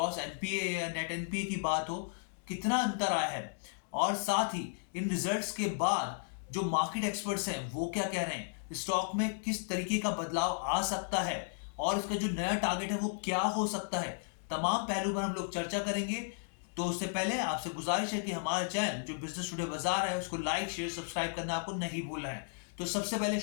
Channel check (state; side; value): silent; right; digital silence